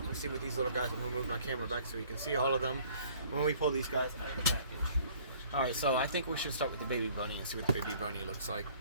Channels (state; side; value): inverted; both; correlation -0.55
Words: and see what these little guys, I'm going to move my camera back so you can see all of them when we pull these guys out of the package. Alright, so I think we should start with the baby bunny and see what the baby bunny looks like.